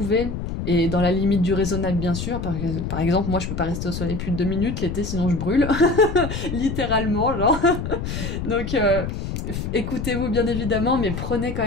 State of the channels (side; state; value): left; noise; rumble, 5 dB below the sound